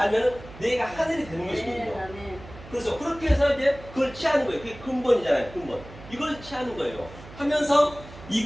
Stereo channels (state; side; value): noise; right; hum, 17 dB below the sound